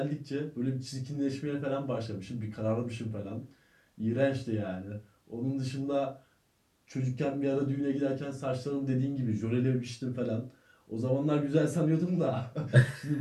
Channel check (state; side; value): identical; both; correlation 1.00